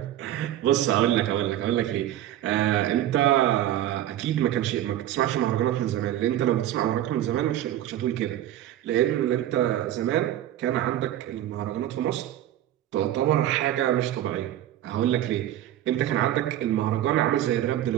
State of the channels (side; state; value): left; quieter; 12.5 dB